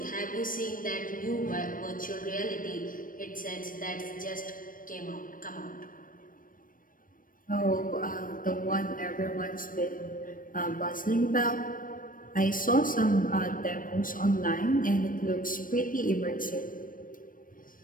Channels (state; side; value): late; right; 0.40 ms